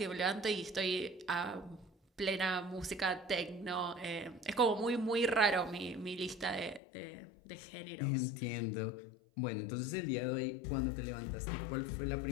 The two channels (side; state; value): right; drops out; at 6.8 s